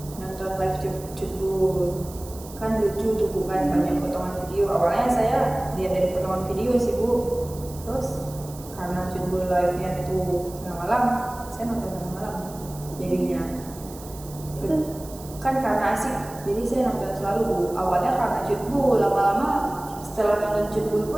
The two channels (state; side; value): noise; right; hiss, 18 dB below the sound